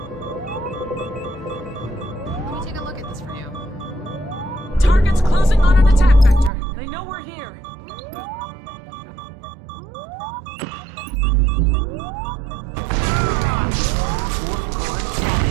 Let me take a look at this for you. Target's closing on an attack vector. They know we're here.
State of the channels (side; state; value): left; drops out; at 6.5 s